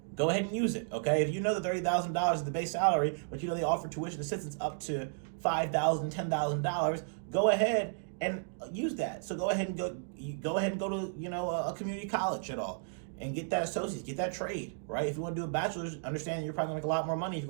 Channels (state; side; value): silent; left; digital silence